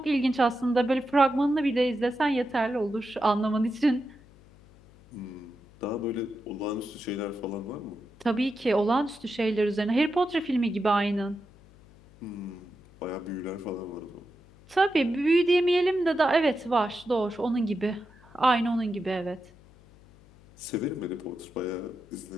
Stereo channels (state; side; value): noise; left; hum, 25 dB below the sound